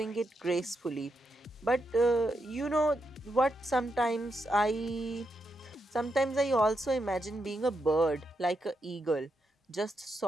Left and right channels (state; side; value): normal; both; correlation 0.83